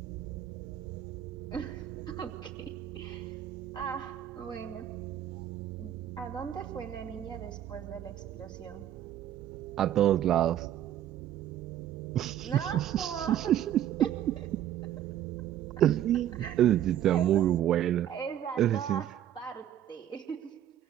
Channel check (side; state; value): left; quieter; 11.3 dB